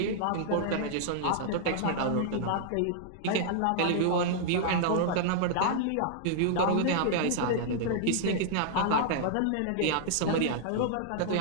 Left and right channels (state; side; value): different; both; correlation -0.01